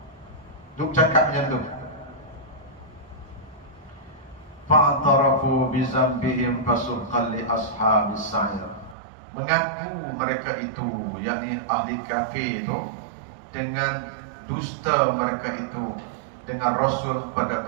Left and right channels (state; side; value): drops out; left; at 9.0 s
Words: Duk cakap macam tu. Fa'tarafu bizambihim fasuqan li ashabis sa'ir. Mengaku mereka itu, yakni ahli kafir itu, dengan dusta mereka itu dengan Rasul pada